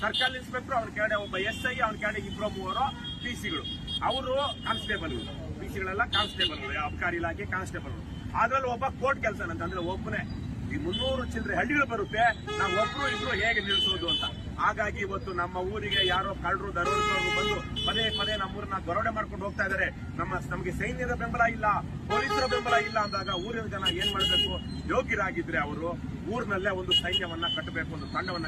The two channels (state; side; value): identical; both; correlation 1.00